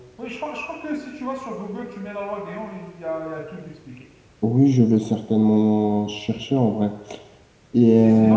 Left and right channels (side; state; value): both; identical; correlation 1.00